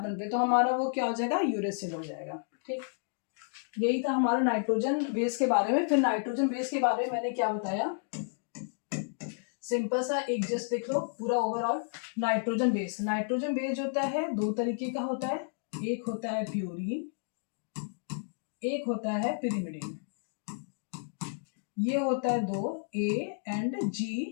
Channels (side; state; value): right; silent; digital silence